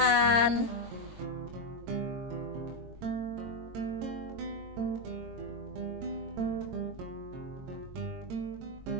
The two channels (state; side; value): late; left; 22 ms